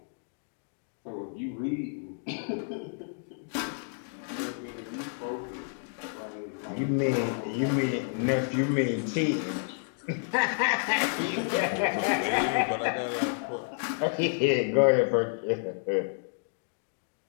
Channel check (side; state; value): right; silent; digital silence